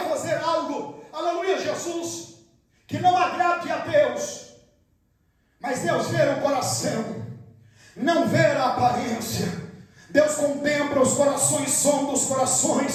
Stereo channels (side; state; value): both; identical; correlation 1.00